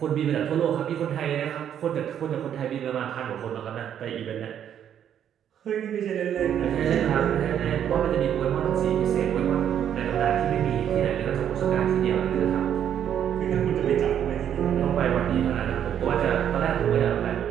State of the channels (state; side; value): quieter; left; 9.5 dB